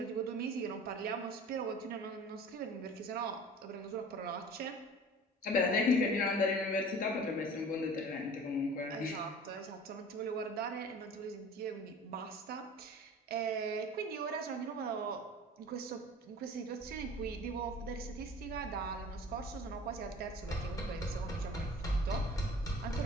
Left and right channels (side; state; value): both; normal; correlation 0.43